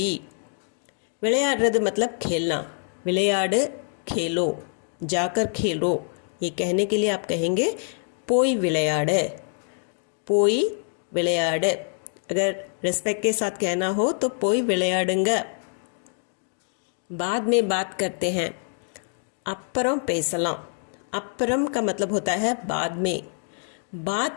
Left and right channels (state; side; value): silent; right; 61 dB below the other